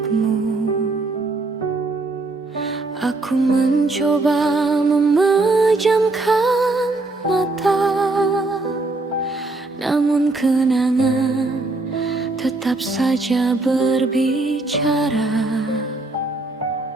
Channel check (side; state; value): left; quieter; 3.2 dB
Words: Aku mencoba memejamkan mata, namun kenangan tetap saja berbicara.